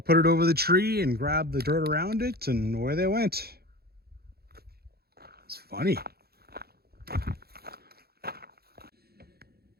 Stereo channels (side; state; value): left; late; 0.46 ms